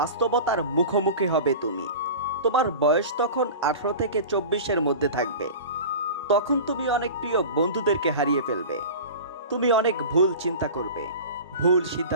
মুখোমুখি হবে তুমি। তোমার বয়স তখন 18 থেকে 24-এর মধ্যে থাকবে। তখন তুমি অনেক প্রিয় বন্ধুদেরকে হারিয়ে ফেলবে। তুমি অনেক ভুল চিন্তা করবে, ভুল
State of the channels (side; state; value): both; inverted; correlation -0.34